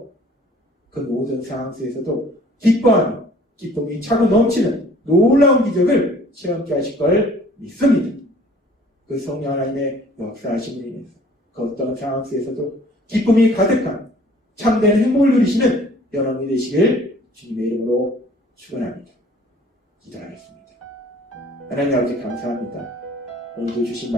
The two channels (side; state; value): both; normal; correlation 0.53